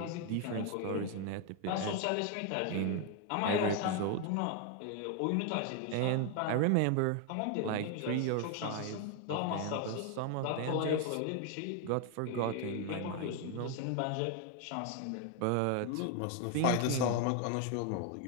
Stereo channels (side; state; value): both; different; correlation 0.01